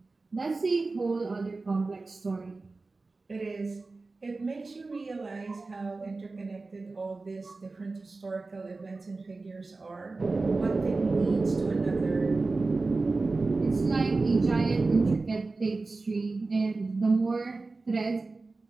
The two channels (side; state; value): left; quieter; 3.6 dB